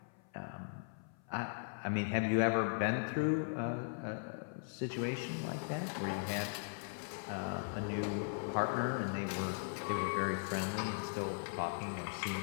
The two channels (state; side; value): silent; right; 52 dB below the other